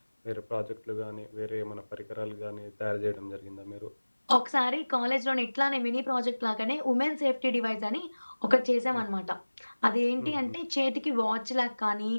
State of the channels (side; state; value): both; inverted; correlation -1.00